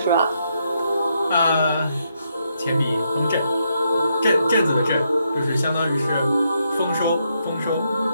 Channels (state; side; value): inverted; both; correlation -0.78